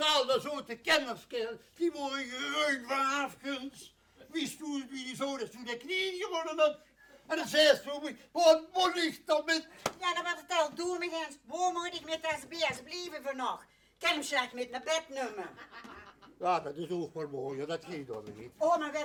dat zo de kennerskerel. Die worden geruid van afgunst. Wist u wie die zo is toen de knieën gewonnen had? En dan zei ze, wat moet ik dan met... Ja, dan wordt het al doen, eens. Waar moet ik met deze beest blijven voor nog? Kan hem slecht met naar bed nemen. Ja, dat is ook wel mooi, dat ging dan niet. Oh, maar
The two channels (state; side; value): identical; both; correlation 1.00